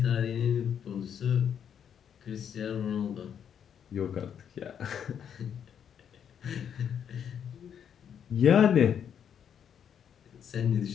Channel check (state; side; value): quieter; right; 8.4 dB